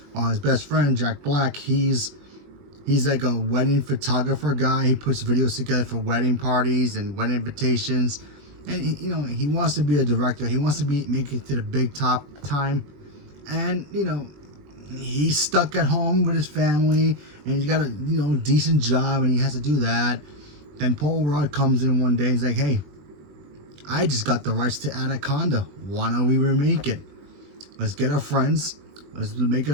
While his best friend Jack Black, he's like a wedding photographer guy. He puts videos together for wedding parties and wedding invitations. And he wants to be a director. He wants to make it to the big top time. And he's stuck at home with his family, and he's got a decent job, and he has to do that. Then Paul Rudd comes in one day and he's like, "Hey, I just got the rights to Anaconda. Why don't we remake it? Let's get our friends, let's make it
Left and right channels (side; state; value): left; late; 21 ms